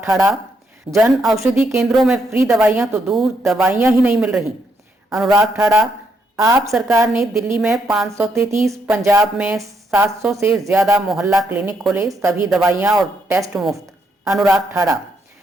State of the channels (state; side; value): normal; both; correlation 0.77